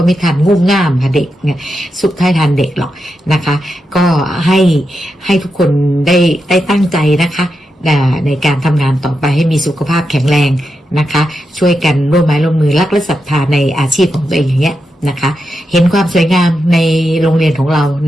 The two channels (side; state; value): both; normal; correlation 0.87